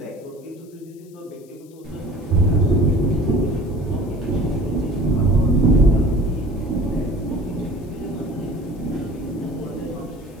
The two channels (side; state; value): left; noise; hiss, 29 dB below the sound